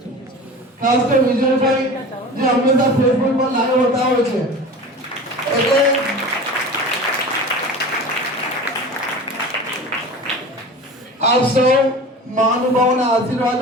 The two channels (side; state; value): both; normal; correlation 0.35